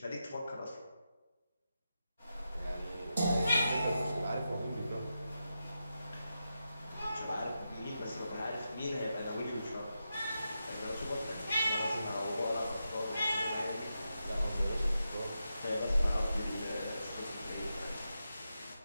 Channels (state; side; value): inverted; both; correlation -0.88